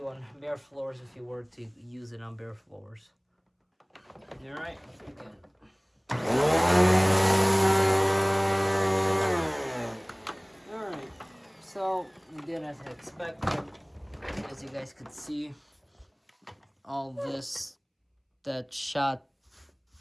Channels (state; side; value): identical; both; correlation 1.00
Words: on bare floors if you were to use it on bare floors. Alright, let's begin. Alright, so we did as I expected. As you guys could see, all this that shot